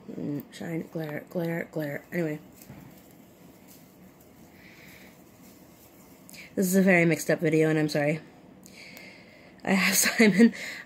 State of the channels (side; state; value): both; identical; correlation 1.00